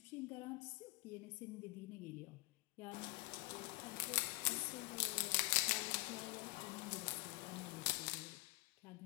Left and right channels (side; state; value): right; quieter; 24.1 dB